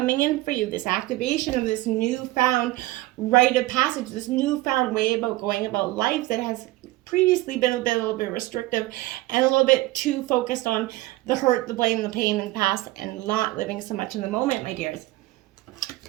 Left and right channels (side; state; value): left; quieter; 18.2 dB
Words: in for you. This activation of this newfound rite of passage, this newfound way about going about life that has previously been a little bit restrictive and a little bit too focused on the hurt, the blame, the pain in the past, and not living so much in the moment, my dears.